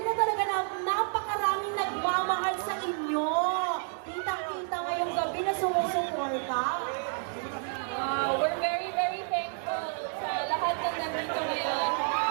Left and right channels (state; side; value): silent; left; 58 dB below the other